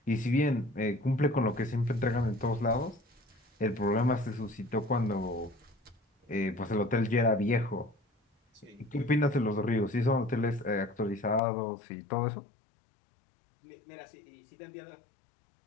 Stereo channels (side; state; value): right; drops out; at 11.4 s